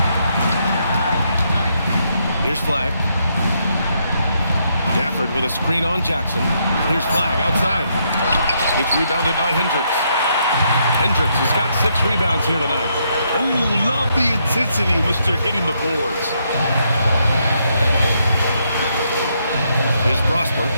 Here's Flag. Gafford with a screen on Jackson. Here's Flag outside. It's rebounded by Hendricks. Hendricks has got 6 rebounds here tonight. Oh, love the intensity in which they're hitting the boards. Here's Prosper.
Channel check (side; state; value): both; inverted; correlation -0.76